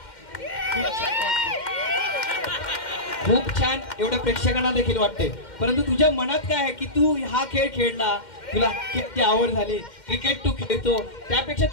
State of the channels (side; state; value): right; late; 2.1 ms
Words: खूप छान एवढ्या प्रेक्षकांना देखील वाटते. परंतु तुझ्या मनात काय आहे की तू हा खेळ खेळला तुला किती आवड झाली क्रिकेट तू खेळतो त्यापेक्षा